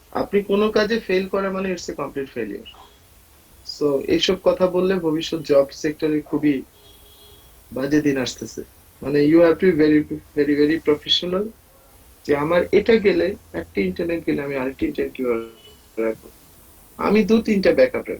আপনি কোনো কাজে ফেল করা মানে it's a complete failure. So এইসব কথা বললে ভবিষ্যৎ জব সেক্টরে খুবই বাজে দিন আসতেছে। মানে you have to be very very very professional, যে আমার এটা গেলে, একটা ইন্টারনেট গেলে আমি আরেকটা ইন্টারনেট কিভাবে রাখবো। আমি 2-3টা ব্যাকআপ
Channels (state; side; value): identical; both; correlation 1.00